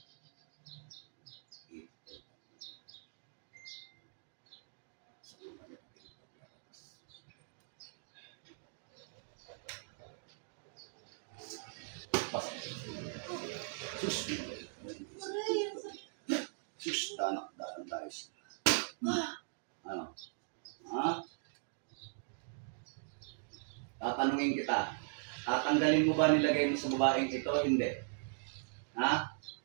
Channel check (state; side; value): silent; left; digital silence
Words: Sus, danak tayo. Ano? Ha? Tatanungin kita. Tatanggalin mo ba nilagay mo sa babaeng ito? Hindi. Ha?